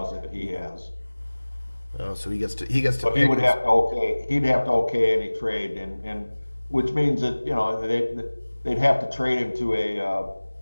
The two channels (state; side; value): inverted; both; correlation -1.00